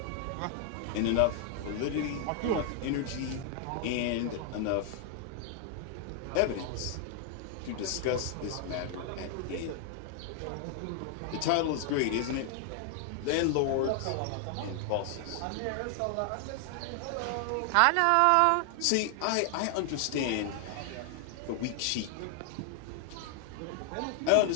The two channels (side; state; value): both; different; correlation 0.00